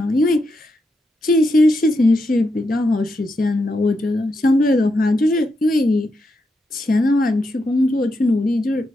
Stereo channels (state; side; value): normal; both; correlation 0.84